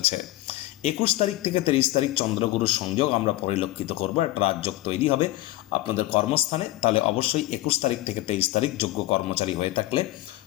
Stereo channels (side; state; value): right; quieter; 17.1 dB